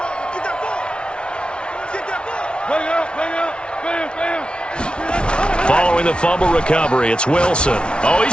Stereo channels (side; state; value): right; late; 0.057 ms